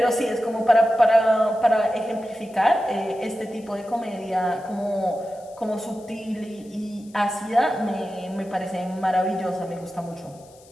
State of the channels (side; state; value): left; noise; hiss, 27 dB below the sound